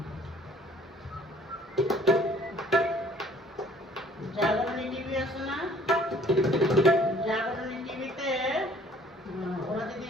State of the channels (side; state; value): both; normal; correlation 0.56